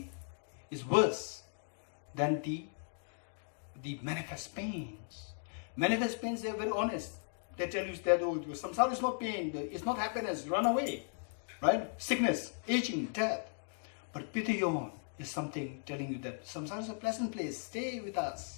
than the manifest pains. Manifest pains, they're very honest. They tell you that samsara is not pain, it's not happiness, run away. Right? Sickness, aging, death. But Pitayon is something telling you that samsara is a pleasant place, stay with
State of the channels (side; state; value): right; silent; 53 dB below the other